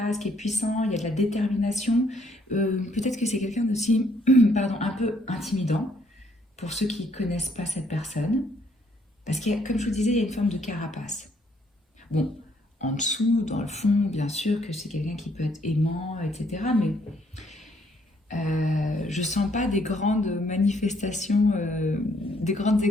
qui est puissant, il y a de la détermination. Peut-être que c'est quelqu'un aussi un peu intimidant pour ceux qui ne connaissent pas cette personne. Parce que, comme je vous disais, il y a une forme de carapace. Bon, en dessous, dans le fond, bien sûr que c'est quelqu'un qui peut être aimant, etc. Mais je ne sens pas des grandes manifestations, des grandes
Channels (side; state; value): both; normal; correlation 0.68